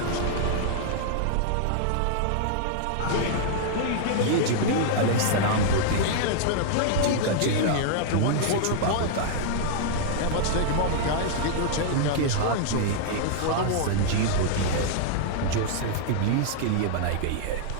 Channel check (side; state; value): both; different; correlation -0.01